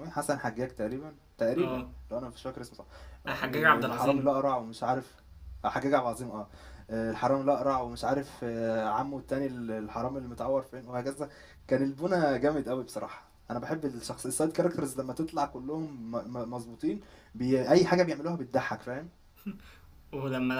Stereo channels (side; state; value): both; identical; correlation 1.00